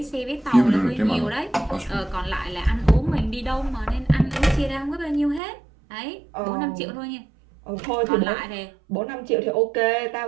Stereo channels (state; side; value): drops out; left; at 5.4 s